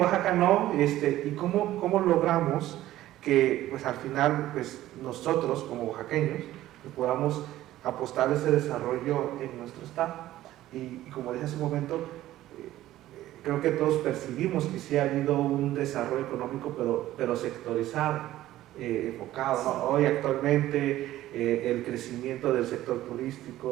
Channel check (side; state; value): left; quieter; 14.5 dB